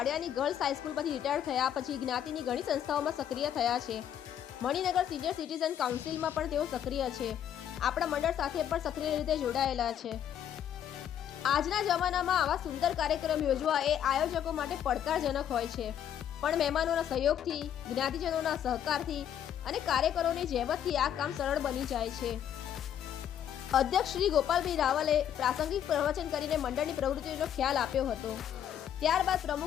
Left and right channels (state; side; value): quieter; right; 9.8 dB